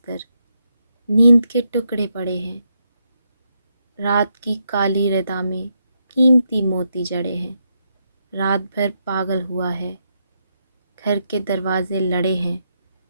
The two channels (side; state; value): both; inverted; correlation -0.81